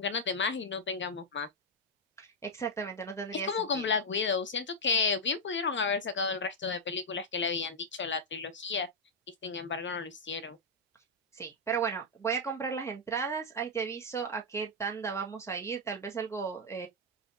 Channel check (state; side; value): normal; both; correlation -0.04